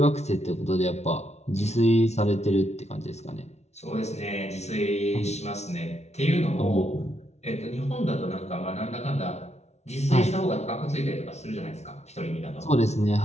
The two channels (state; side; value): late; right; 0.32 ms